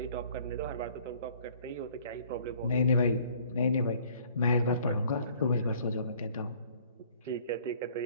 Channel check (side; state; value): both; inverted; correlation -0.56